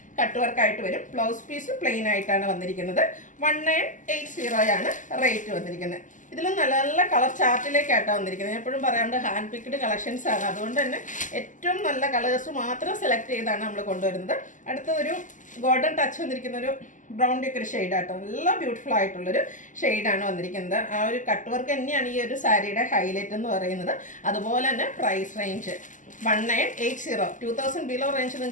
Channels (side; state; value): right; late; 0.37 ms